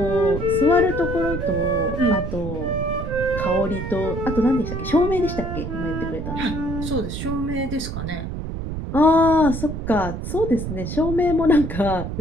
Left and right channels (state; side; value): noise; right; rumble, 5 dB below the sound